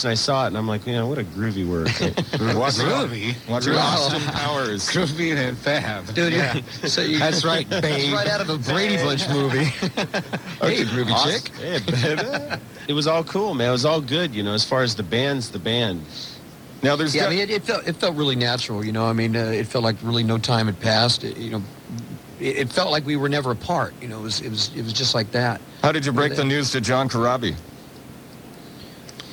and I saw it, and I'm like, what a groovy word. Groovy? Austin Powers. Groovy and fab. Dude, that's right, babe. That's right out of a Brady Bunch movie. Hey, groovy chick. Hey, baby. It was all cool, man. It was all good, as far as the band's the band. Now, there's I mean, it felt really natural, I mean, it felt like really no time had passed. It felt like we were never apart. It was just like that. How did you break the news to John Corabi?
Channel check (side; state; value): both; identical; correlation 1.00